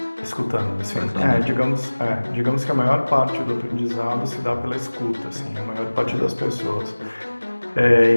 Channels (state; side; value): inverted; both; correlation -1.00